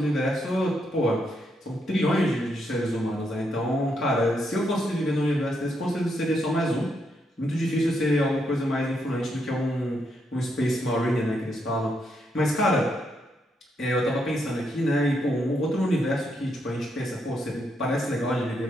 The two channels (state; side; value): normal; both; correlation 0.78